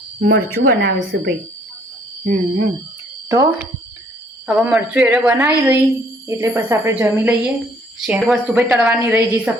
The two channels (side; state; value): both; normal; correlation 0.62